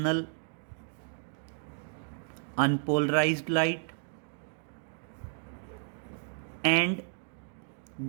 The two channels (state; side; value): silent; left; digital silence